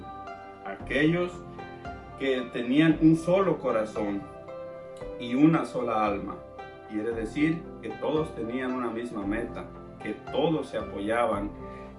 Aquellos que tenían un solo corazón y una sola alma. Quiere decir que todos tenían una misma meta, que todos se apoyaban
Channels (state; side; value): identical; both; correlation 1.00